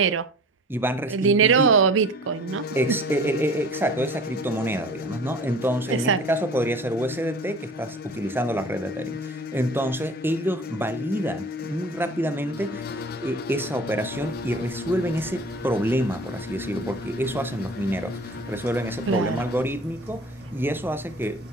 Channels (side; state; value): both; normal; correlation 0.43